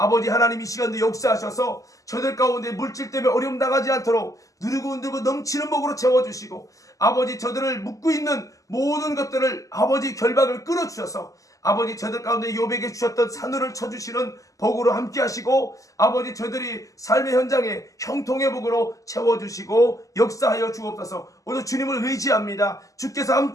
하나님 이 시간도 역사하셔서 저들 가운데 물질 때문에 어려움 당하지 않도록 누르고 넘치는 복으로 채워주시고 아버지 저들을 묶고 있는 모든 것들을 아버지 결박을 끊어주셔서 아버지 저들 가운데 욥에게 주셨던 산울을 쳐주시는 복으로 함께 하시고 아버지 저들이 삶의 현장에 형통의 복으로 채워주시고 역사하여 주옵소서. 오늘 주님을 의지합니다. 주께서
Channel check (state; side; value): late; right; 0.16 ms